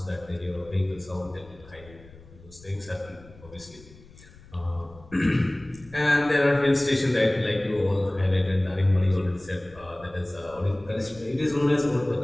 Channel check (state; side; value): noise; left; rumble, 22 dB below the sound